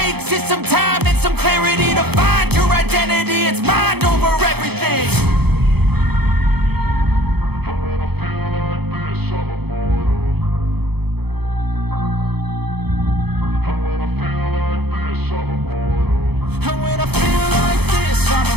is some time and some clarity to find your identity. It's mind over everything. And when I feel like this, I'm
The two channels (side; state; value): left; late; 0.97 ms